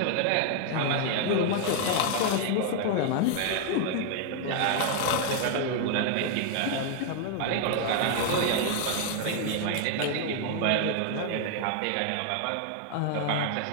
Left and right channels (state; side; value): different; both; correlation 0.00